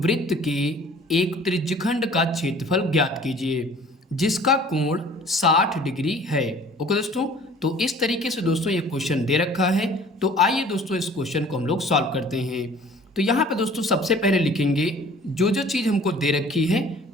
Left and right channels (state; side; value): normal; both; correlation 0.50